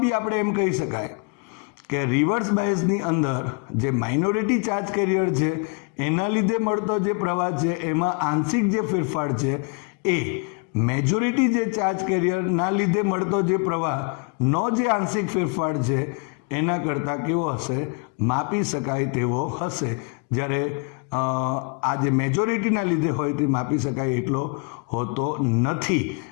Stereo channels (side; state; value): right; quieter; 33.9 dB